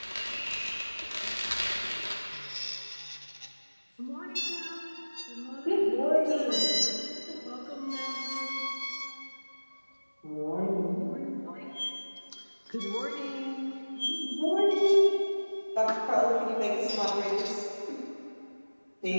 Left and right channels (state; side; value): inverted; both; correlation -1.00